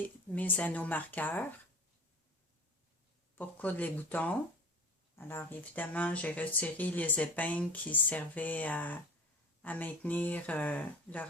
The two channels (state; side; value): normal; both; correlation 0.37